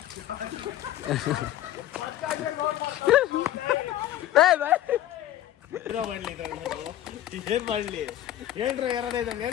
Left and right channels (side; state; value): right; quieter; 12.9 dB